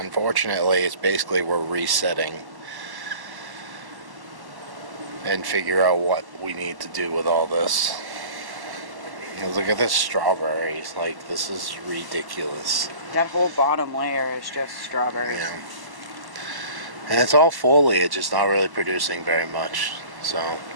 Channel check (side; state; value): left; late; 1.1 ms